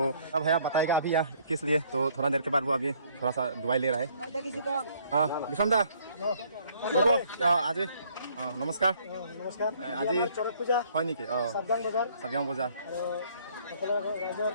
अब भैया बताएगा अभी यहाँ किस लिए। तो थोड़ा देर के बाद वो अभी थोड़ा सा दवाई ले रहा है। हाँ विषम दा आज नमस्कार आज চৰক পূজা হয় নেকি? চাবগাং বজাৰ সকলো ৰাইজৰ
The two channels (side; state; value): both; inverted; correlation -0.62